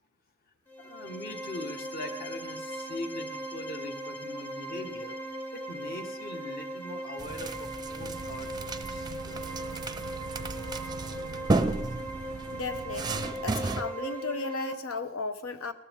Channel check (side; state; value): both; normal; correlation 0.50